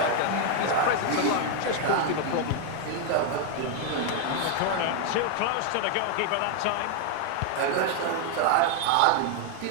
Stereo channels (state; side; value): different; both; correlation 0.00